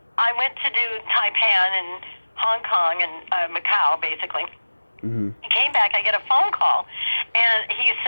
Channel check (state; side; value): inverted; both; correlation -1.00